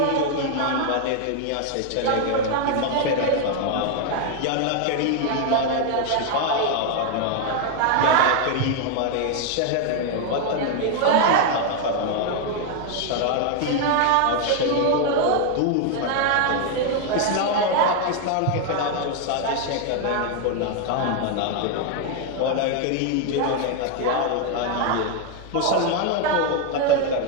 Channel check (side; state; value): both; different; correlation 0.01